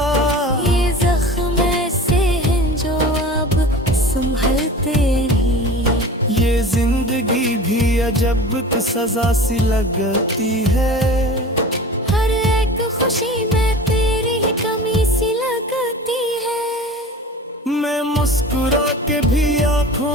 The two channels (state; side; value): normal; both; correlation 0.38